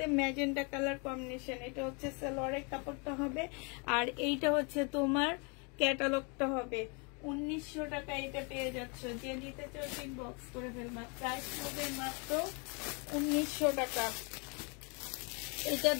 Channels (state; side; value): quieter; right; 33.5 dB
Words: ম্যাজেন্ডা কালার কম্বিনেশন। এটা হচ্ছে সালোয়ারের কাপড়টা হবে, আর এইটা হচ্ছে তোমার ক্যাটালগটা হবে। 1900 টাকা এটা পেয়ে যাচ্ছ। যে নিতে চাও ইনবক্স করে ফেলবা। প্রাইস হবে মাত্র 1900 টাকা। এটা